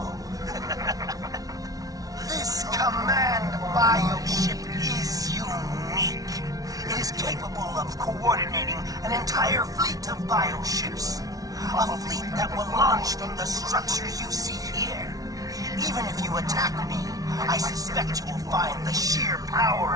This command bioship is unique. It is capable of coordinating an entire fleet of bioships. A fleet that will launch from the structures you see here. Even if you attack me, I suspect you will find the sheer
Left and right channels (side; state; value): left; late; 0.18 ms